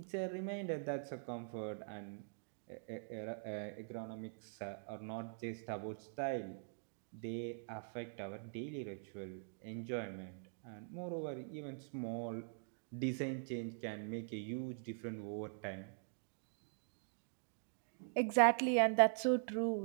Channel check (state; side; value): silent; left; digital silence